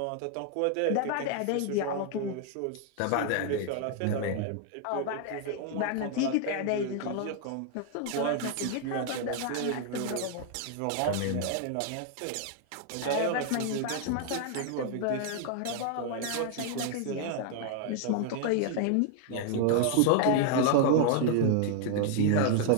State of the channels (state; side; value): different; both; correlation 0.00